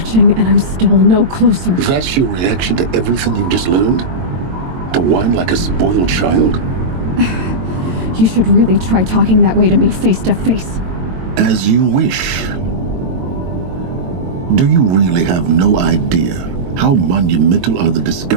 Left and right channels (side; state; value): left; late; 22 ms